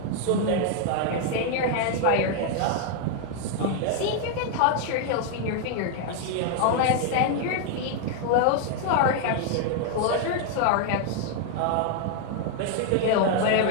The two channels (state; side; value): different; both; correlation 0.00